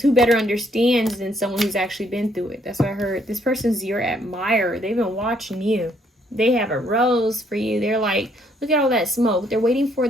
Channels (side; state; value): both; normal; correlation 0.68